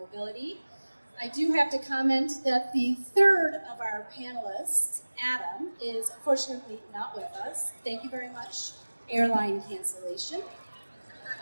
I do have to comment that the third of our panelists, Adam, is unfortunately not with us. Thank you very much, airline cancellation.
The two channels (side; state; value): both; inverted; correlation -1.00